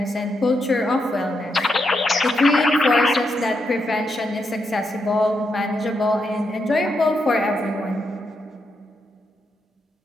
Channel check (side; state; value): both; normal; correlation 0.82